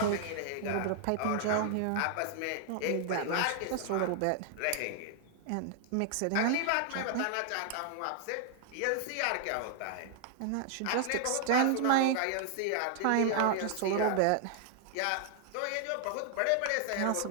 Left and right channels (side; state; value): both; different; correlation 0.00